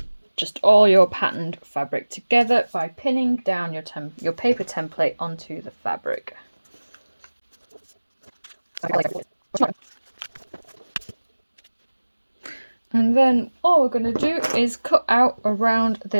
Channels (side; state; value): both; inverted; correlation -1.00